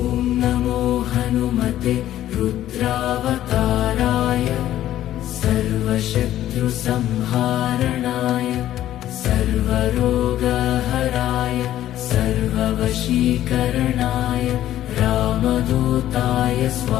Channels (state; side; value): quieter; right; 12.8 dB